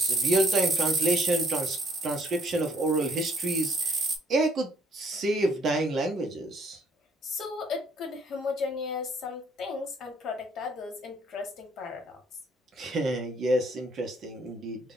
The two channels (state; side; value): normal; both; correlation 0.65